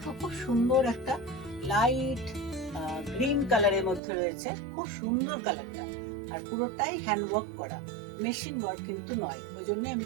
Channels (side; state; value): left; drops out; at 4.0 s